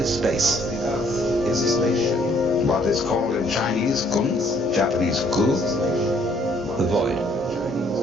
space. The earth is a spaceship. What is called in Chinese Gun, Japanese Gu, the void.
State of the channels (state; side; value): normal; both; correlation 0.64